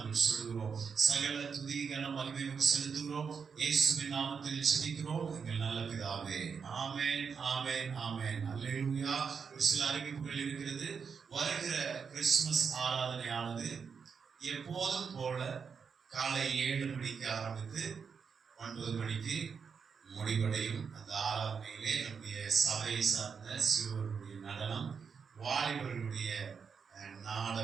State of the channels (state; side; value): quieter; left; 6.1 dB